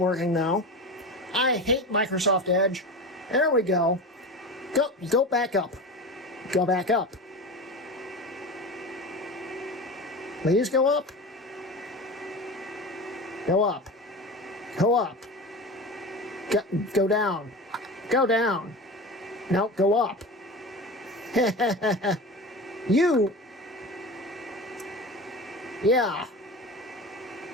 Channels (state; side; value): normal; both; correlation 0.29